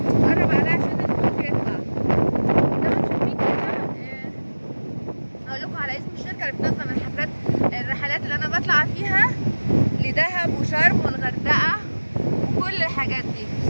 قرب عليها عشان الصوت يطلع. زي ما انتم شايفين كده، هقول لكم على اسم الشركه اللي بتنظم الرحلات اللي انا بطلع فيها لدهب وشرم والغردقه وكل الحاجات دي.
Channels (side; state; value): both; inverted; correlation -1.00